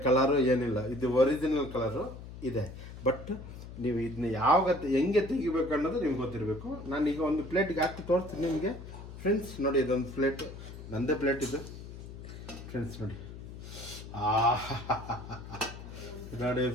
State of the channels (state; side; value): noise; left; hum, 12 dB below the sound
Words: ಕಲರು ಏನಿಲ್ಲ, ಇದು ಒರಿಜಿನಲ್ ಕಲರು ಇದೆ. ಬಟ್ ನೀವು ಇದನ್ನ ಹೆಂಗೆ ತೆಗಿಬೇಕು ಅನ್ನೋದು ನಿಮ್ಗೆ ಗೊತ್ತಿರಬೇಕು. ನಾನೀಗ ಒಂದು ಪ್ಲೇಟ್ಗೆ ಹಾಕಿ ತೋರಿಸ್ತೀನಿ ನಿಮಗೆ ಫ್ರೆಂಡ್ಸ್. ನೋಡಿ ಇದೊಂದು ಪ್ಲೇಟು, ನಂದೇ ಪ್ಲೇಟ್ ಇದು ಫ್ರೆಂಡ್ಸ್. ನೋಡಿ ನೋಡಿ